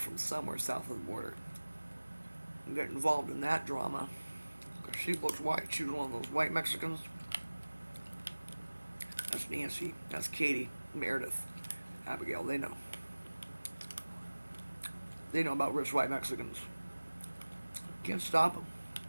somewhere south of the border. And got involved in that drama. Because she looked white. She was one of those white Mexicans. That's Nancy. That's Katie. Meredith. Abigail. They know. They know about rich white Mexicans. Can't stop them.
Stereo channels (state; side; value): inverted; both; correlation -1.00